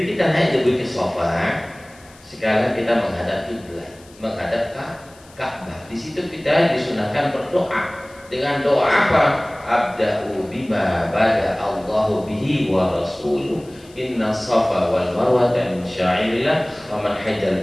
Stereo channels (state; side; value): noise; left; hiss, 26 dB below the sound